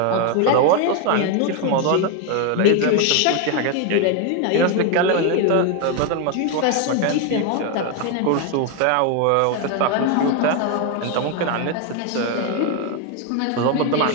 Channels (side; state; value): both; different; correlation 0.01